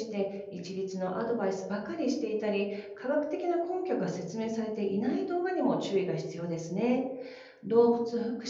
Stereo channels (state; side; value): identical; both; correlation 1.00